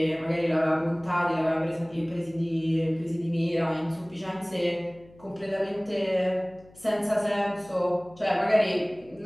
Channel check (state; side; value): noise; left; hum, 25 dB below the sound